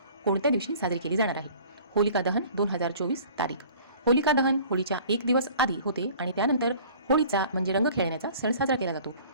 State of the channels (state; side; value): inverted; both; correlation -0.49